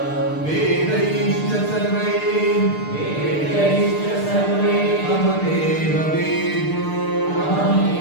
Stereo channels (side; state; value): right; late; 6.7 ms